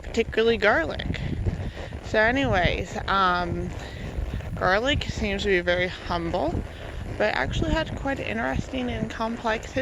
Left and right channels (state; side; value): identical; both; correlation 1.00